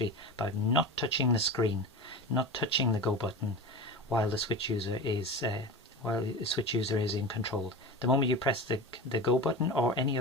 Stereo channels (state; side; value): normal; both; correlation 0.29